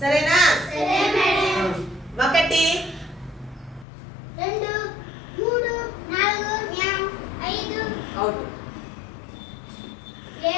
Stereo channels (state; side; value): drops out; right; at 3.9 s